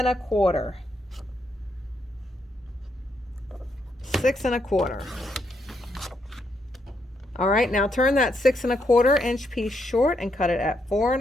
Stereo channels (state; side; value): normal; both; correlation 0.78